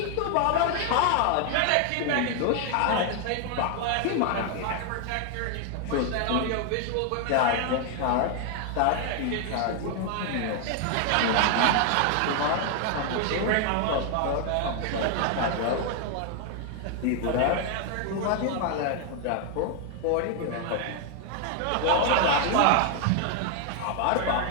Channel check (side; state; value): both; different; correlation 0.00